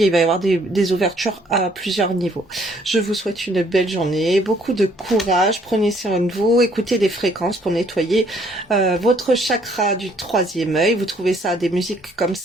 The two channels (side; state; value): both; normal; correlation 0.64